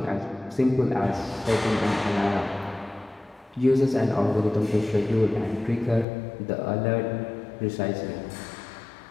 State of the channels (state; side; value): drops out; right; at 6.1 s